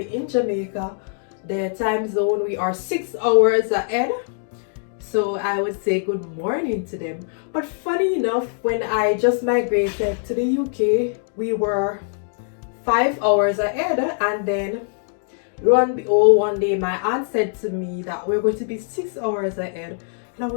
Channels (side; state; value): right; silent; digital silence